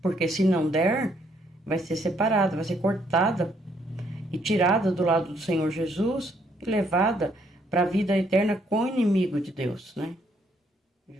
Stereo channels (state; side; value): normal; both; correlation 0.70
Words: se não der, vai ser separada, vai ser cortada e tirada do lado do Senhor Jesus e levada para a vida eterna com o inimigo de Deus, né?